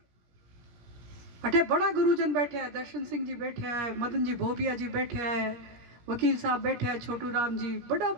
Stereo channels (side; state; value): left; late; 17 ms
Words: अठे बड़ा गुरुजन बैठे हैं, दर्शन सिंह जी बैठे हैं, मदन जी भोबिया जी बैठे हैं, वकील साहब बैठे हैं, छोटू राम जी, बड़ा